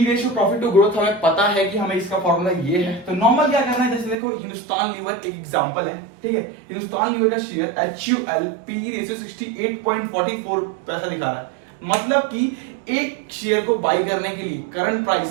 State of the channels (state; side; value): drops out; left; at 4.2 s